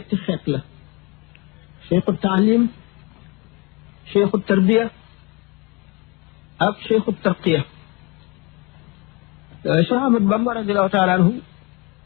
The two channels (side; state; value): right; quieter; 26.7 dB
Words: xeet la cheikhu taalim cheikhu tarbiya ak cheikhu tarqiya Cheikh Ahmad Bamba radiallahu taala anhu